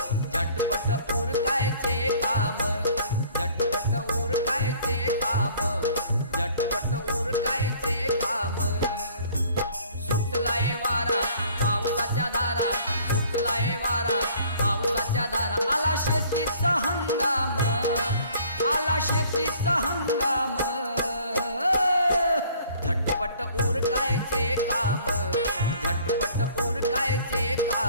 झटपट उरकायचे काम, झटपट उरकायचे काम, झटपट उरकायचे काम। सुटलाय वारा पावसाच्या धारा, सुटलाय वारा पावसाच्या धारा, आला शेतीचा हंगाम, आला शेतीचा हंगाम, झटपट उरकायचे काम,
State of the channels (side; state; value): both; inverted; correlation -0.54